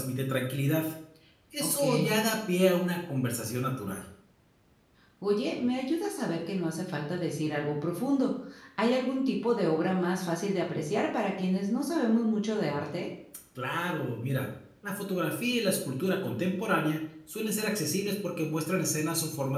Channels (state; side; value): identical; both; correlation 1.00